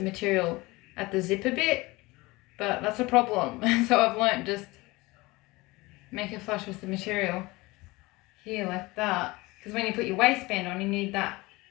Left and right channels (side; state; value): right; quieter; 22.1 dB